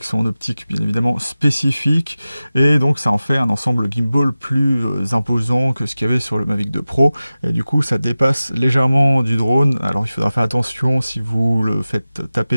son optique bien évidemment spécifique, et donc ça en fait un ensemble gimbal plus imposant que ce qu'il y avait sur le Mavic 2 Pro, et du coup ça dépasse légèrement du drone. Alors il faudra faire attention si vous le faites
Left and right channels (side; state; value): both; inverted; correlation -0.96